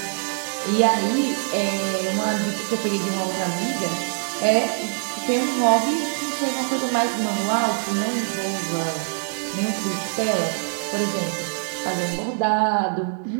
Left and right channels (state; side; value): silent; left; 63 dB below the other